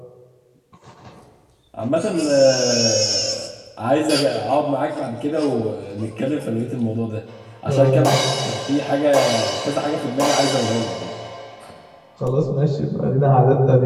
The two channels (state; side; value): identical; both; correlation 1.00